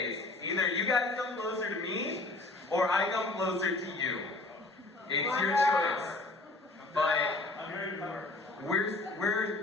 Either you guys come closer to me, or I come closer to you. It's your choice. But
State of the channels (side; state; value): right; quieter; 3.1 dB